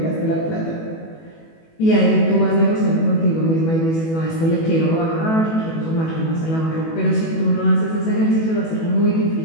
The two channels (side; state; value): right; late; 18 ms